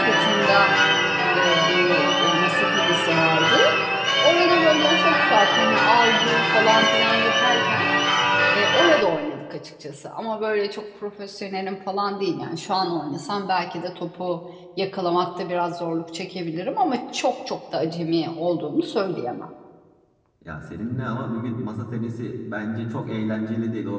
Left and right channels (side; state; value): both; identical; correlation 1.00